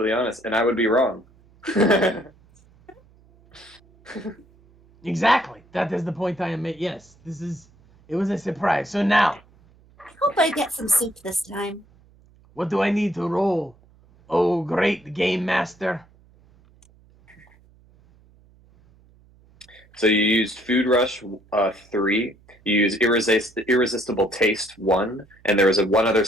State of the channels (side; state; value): right; noise; hum, 29 dB below the sound